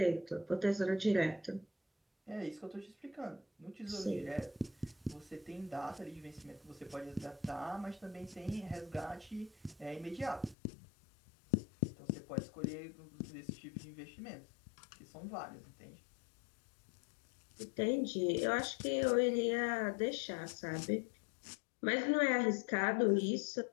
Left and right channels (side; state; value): right; drops out; at 10.6 s